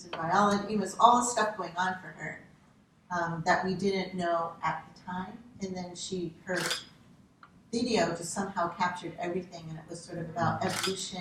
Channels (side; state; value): both; identical; correlation 1.00